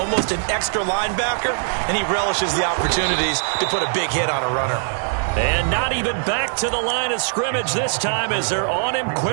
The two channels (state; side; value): silent; left; digital silence